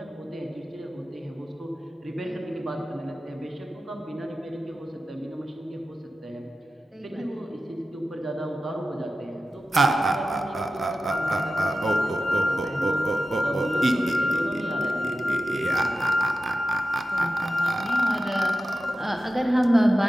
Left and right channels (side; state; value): both; normal; correlation 0.93